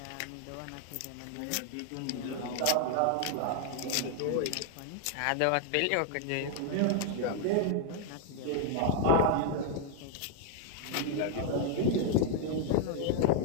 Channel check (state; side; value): different; both; correlation 0.00